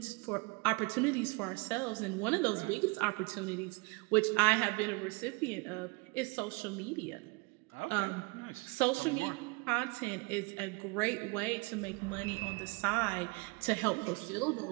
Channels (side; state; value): left; quieter; 27.9 dB